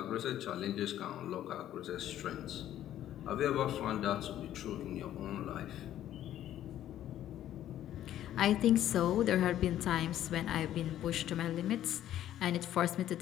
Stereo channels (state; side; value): quieter; right; 12.0 dB